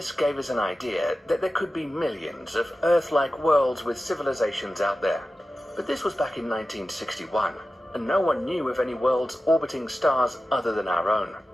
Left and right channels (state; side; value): normal; both; correlation 0.94